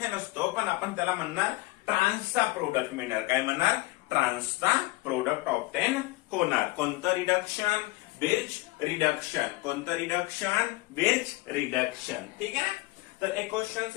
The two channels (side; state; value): right; quieter; 21.0 dB